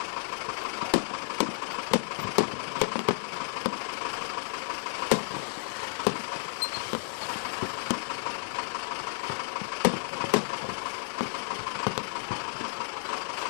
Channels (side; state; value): right; silent; 57 dB below the other